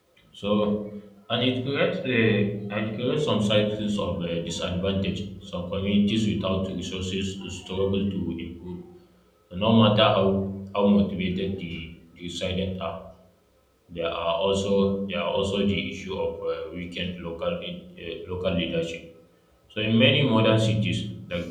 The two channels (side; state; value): both; identical; correlation 1.00